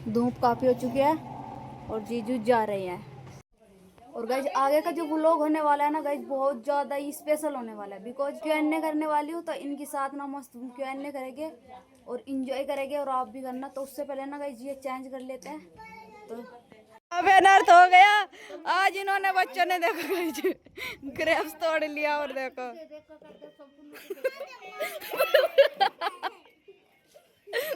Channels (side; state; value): both; identical; correlation 1.00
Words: धूप काफ़ी हो चुकी है और जीजू जा रहे हैं। और गाइज आगे का जो व्लॉग होने वाला है ना गाइज, बहुत ज़्यादा ही स्पेशल होने वाला है। बिकॉज Q&A करने वाली हूँ तो इनके साथ ना मस्त Q&A करेंगे और इंजॉय करेंगे। और आप भी करना। तो उससे पहले ना गाइज ये चेंज कर लेते हैं। तो अब अनर्थ हो गया आज। इन्होंने बच्चों ने देखो गाइज ग्रेप्स तोड़ लिया। और देखो